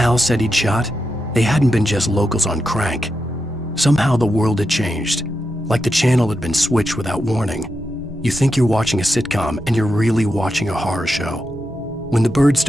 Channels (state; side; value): normal; both; correlation 0.87